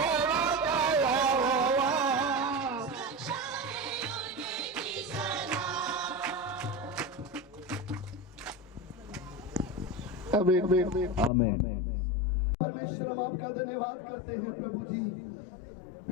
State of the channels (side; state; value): right; drops out; at 11.3 s